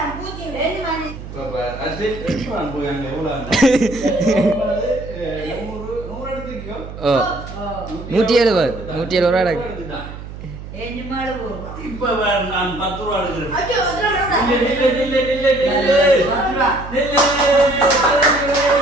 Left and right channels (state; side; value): noise; right; hum, 12 dB below the sound